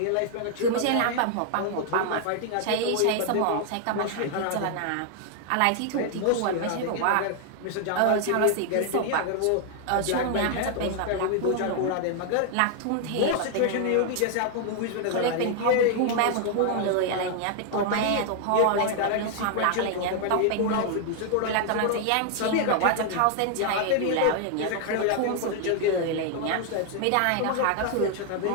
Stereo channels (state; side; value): different; both; correlation 0.00